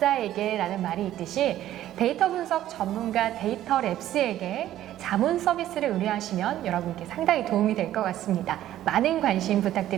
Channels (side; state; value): left; quieter; 12.9 dB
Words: 라는 말이 있듯이 데이터 분석 전문가 데이터랩스에게 자문 서비스를 의뢰하시면 여러분께 상당히 도움이 될 것 같습니다. 많은 관심